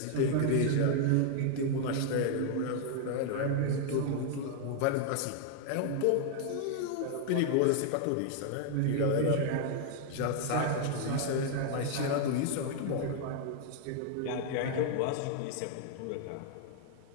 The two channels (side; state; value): both; different; correlation 0.00